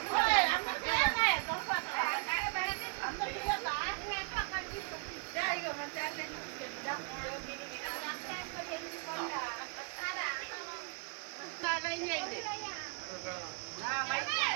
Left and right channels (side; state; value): left; quieter; 36.3 dB